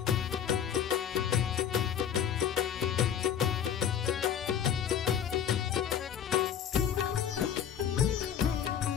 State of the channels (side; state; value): right; quieter; 8.8 dB